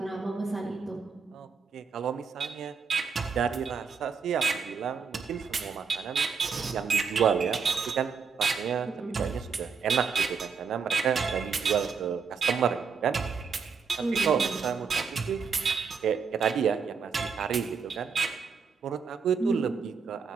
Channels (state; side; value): quieter; left; 5.7 dB